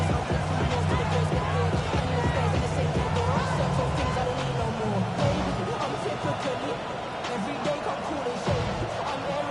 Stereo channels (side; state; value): both; identical; correlation 1.00